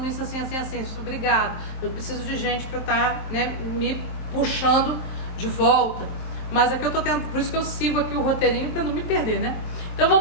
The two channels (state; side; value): late; right; 23 ms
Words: isso assim, assim, assim, obrigado, eu preciso de gente para estar, né, me puxando de volta, mas aqui eu tô tendo, por isso que eu sigo aqui o roteirinho para não me perder, né? Então